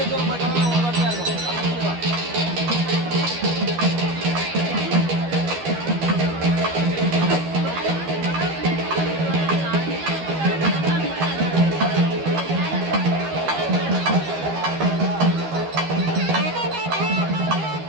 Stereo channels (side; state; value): left; late; 12 ms